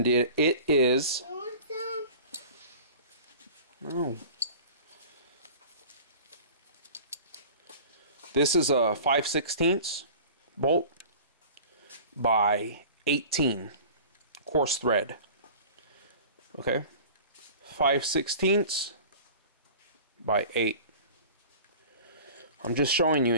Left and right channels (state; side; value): inverted; both; correlation -0.41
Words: it is. You want some? No. This is a 5/16 bolt by 18 coarse thread. Okay? 5/16 by 8. I'm just showing you